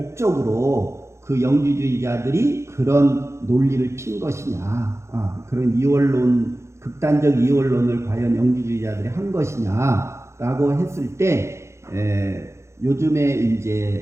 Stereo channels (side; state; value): left; late; 0.13 ms